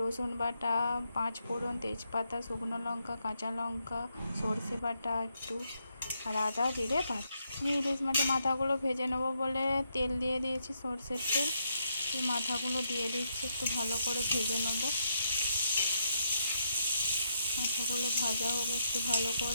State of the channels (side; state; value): both; inverted; correlation -0.78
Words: বাটা, পাঁচ ফোড়ন, তেজপাতা, শুকনো লঙ্কা, কাঁচা লঙ্কা, সর্ষে বাটা একটু, আর আদা জিরে বাটা। আমি ইলিশ মাছের মাথাগুলো ভেজে নেবো বলে তেল দিয়ে দিয়েছি, সর্ষের তেল। এই মাথাগুলো দিয়ে দিচ্ছি, একটু ভালো করে ভেজে নেবো। মাথাগুলো ভাজা হোক একটু ভালো